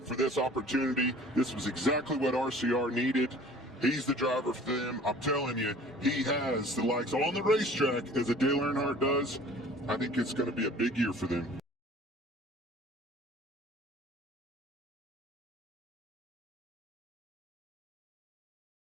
for this opportunity. This was exactly what RCR needed. He's the driver for them. I'm telling you, he has the likes on the racetrack as a Dale Earnhardt does. I think it's going to be a big year for them.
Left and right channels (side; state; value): both; normal; correlation 0.48